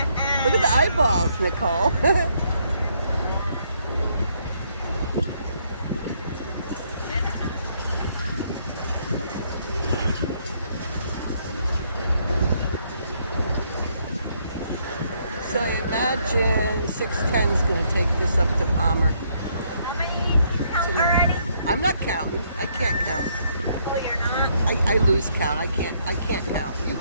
Look at the eyeballs, Nicole. So I imagine 610 is going to take this up to Palmer How many counts tonight. already? I'm not counting. I can't count. Oh, you're not? I lose count. I can't count. You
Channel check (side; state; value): both; inverted; correlation -0.71